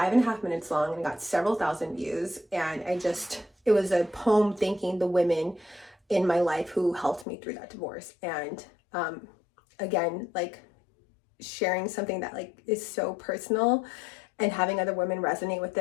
minutes long and got several thousand views. And it was a poem thanking the women in my life who helped me through that divorce. And again, like sharing something that like is so personal and having other women resonate with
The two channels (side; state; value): right; drops out; at 7.2 s